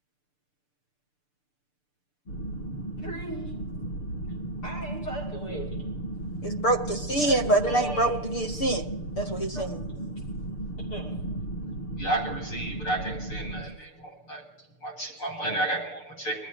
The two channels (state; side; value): late; right; 6.8 ms